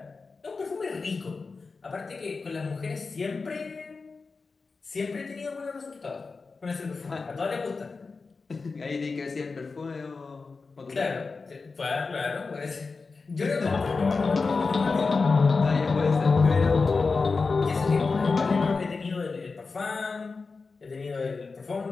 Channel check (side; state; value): right; quieter; 4.3 dB